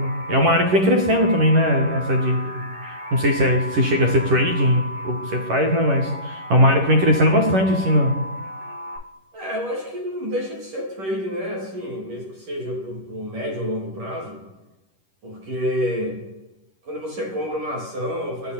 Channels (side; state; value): left; late; 11 ms